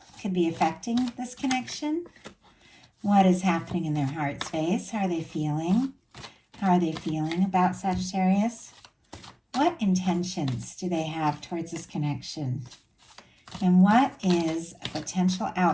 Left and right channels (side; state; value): both; identical; correlation 1.00